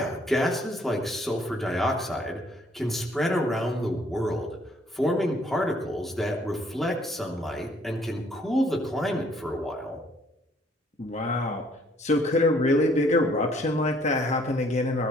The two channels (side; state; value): both; normal; correlation 0.63